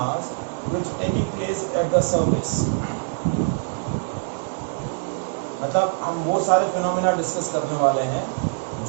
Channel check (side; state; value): left; silent; digital silence